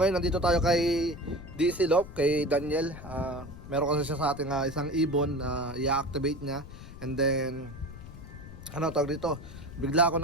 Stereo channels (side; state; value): left; noise; rumble, 14 dB below the sound